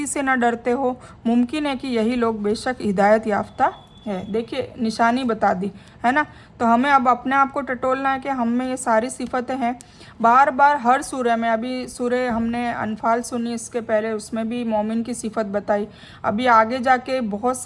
से न डरते हो। मुमकिन है कि यही लोग बेशक हिदायत याफ्ता है। देखिए निशानी बता दी है ना। तो हमें अब अपने आप को टटोलना है कि हम में ये सारी सिफतें हैं। बार बार हर सूरह में, अभी सूरह हमने अनफाल सुनी इसके पहले, उसमें भी मोमिन की सिफत बताई। अभी आगे जाके बहुत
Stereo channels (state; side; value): identical; both; correlation 1.00